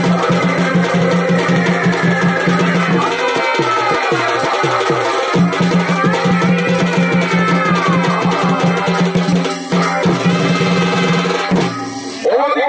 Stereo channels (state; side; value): identical; both; correlation 1.00